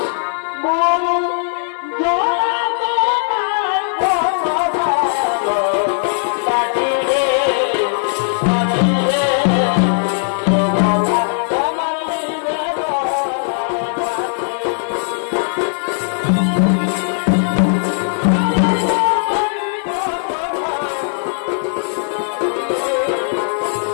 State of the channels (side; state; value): right; silent; 58 dB below the other